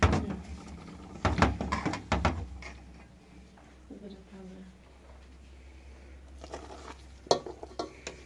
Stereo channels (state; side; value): identical; both; correlation 1.00